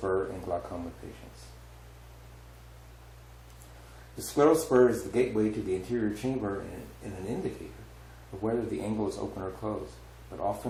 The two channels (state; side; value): identical; both; correlation 1.00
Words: in glaucoma patients. The scleral spur is the gateway to the anterior chamber and an indicator of whether the angle is open or closed, but